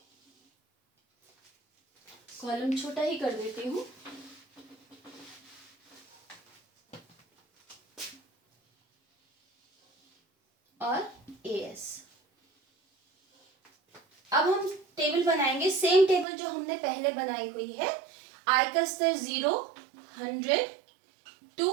Column छोटा ही कर देती हूं, और एएस। अब हम टेबल बनाएंगे, सेम टेबल जो हमने पहले बनाई हुई है। आई का स्तर 0, 100,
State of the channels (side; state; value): left; drops out; at 16.2 s